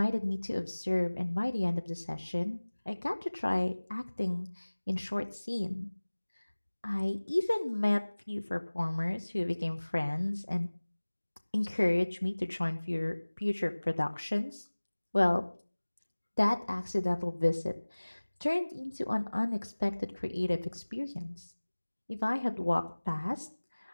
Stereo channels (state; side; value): inverted; both; correlation -1.00